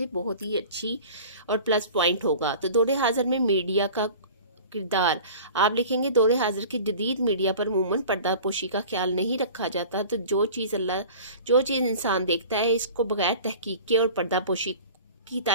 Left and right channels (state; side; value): inverted; both; correlation -0.41